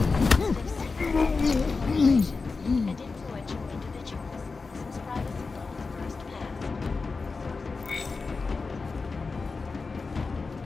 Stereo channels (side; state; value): right; quieter; 4.3 dB